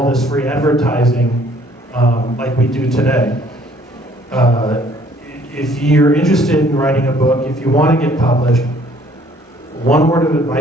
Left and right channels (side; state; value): both; normal; correlation 0.59